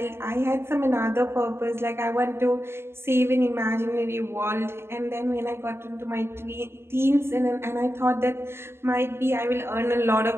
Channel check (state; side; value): late; left; 0.12 ms